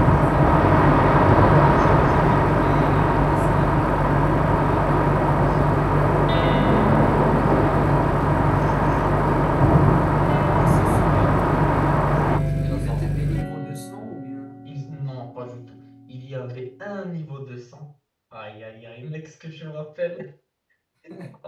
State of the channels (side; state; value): both; identical; correlation 1.00